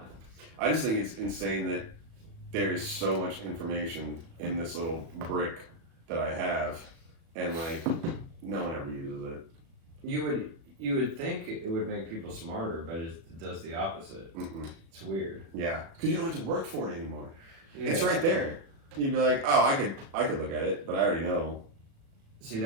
I just think it's insane that there's so much information in this little brick that I have, and like no one ever uses it. You would think it would make people smarter, but it does the opposite. It's weird. Yeah, because you don't have to work for it anymore. Yeah. It's right there. You'd be like, oh, I could look at it, but I already know. See,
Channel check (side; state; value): left; late; 36 ms